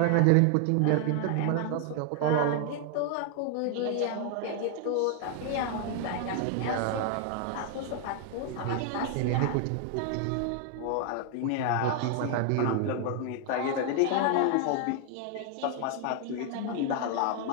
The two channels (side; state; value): both; different; correlation 0.00